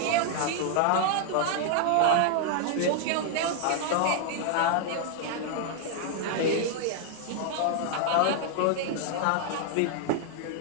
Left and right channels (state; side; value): different; both; correlation 0.00